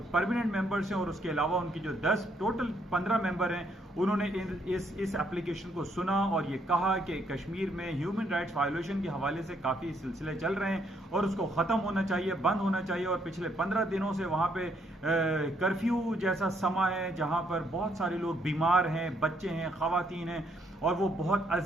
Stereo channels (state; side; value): normal; both; correlation 0.71